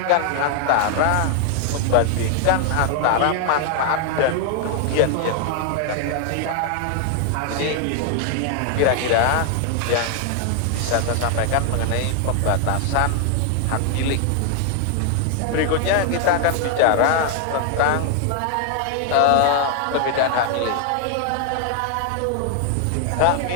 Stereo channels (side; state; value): both; different; correlation 0.00